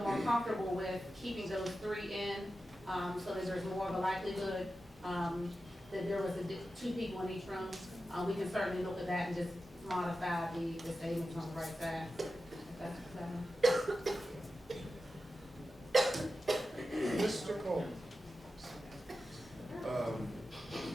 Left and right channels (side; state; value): both; normal; correlation 0.92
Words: more comfortable with keeping those 3 in, so that there's more of a likelihood that there was 2 people in each room, we can certainly look at that and just modify the statements on the right side. Mr. Cole?